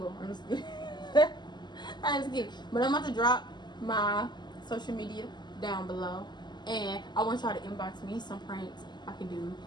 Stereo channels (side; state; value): right; late; 0.21 ms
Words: I'm just kidding. I'm just kidding. But I'm about to drop my social media down below, and I want y'all to inbox me some pranks I can do